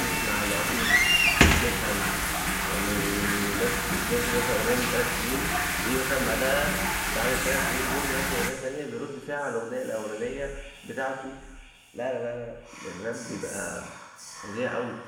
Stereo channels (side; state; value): both; identical; correlation 1.00